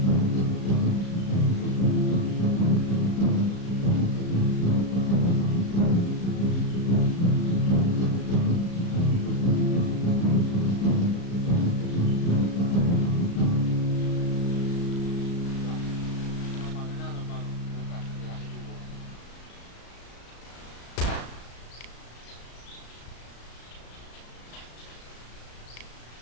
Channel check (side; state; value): right; late; 35 ms